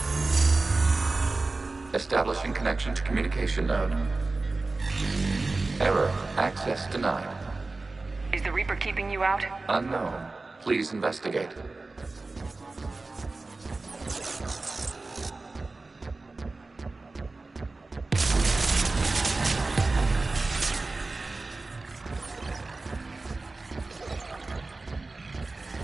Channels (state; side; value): quieter; left; 3.4 dB